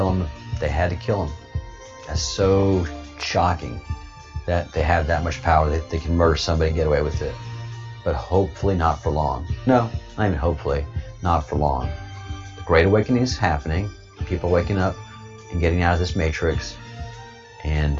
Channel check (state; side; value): identical; both; correlation 1.00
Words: him. They had to kill him. That's so shocking that they have that much power. They can murder somebody and get away with it. But hopefully not for long. No, not even hopefully, not for long. The Great Awakening is happening. People waking up and getting out of this matrix. And